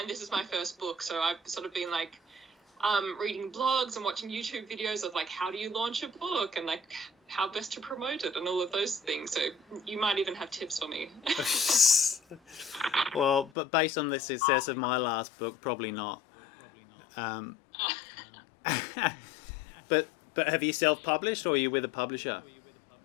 this is my first book, so I've sort of been like reading blogs and watching YouTube videos of like how do you launch a book and like how best to promote it and all of those things. So you might even have tips for me. Well, but based on the success of my last book, probably not. Um, but have you self-published or are you with a publisher?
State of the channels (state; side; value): drops out; right; at 13.5 s